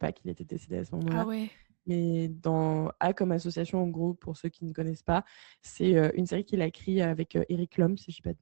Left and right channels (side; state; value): left; silent; digital silence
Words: qu'il était décédé à ce Ah moment-là. ouais. Mais dans A comme association, en gros, pour ceux qui ne connaissent pas, c'est une série qu'il a écrite avec Eric Lhomme, si je ne dis